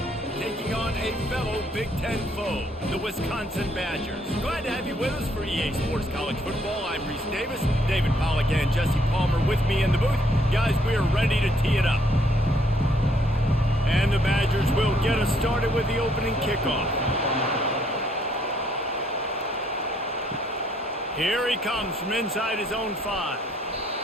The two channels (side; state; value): both; normal; correlation 0.68